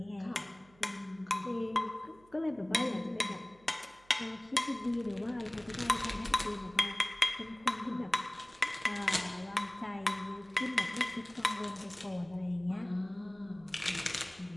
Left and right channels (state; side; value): noise; right; hum, 28 dB below the sound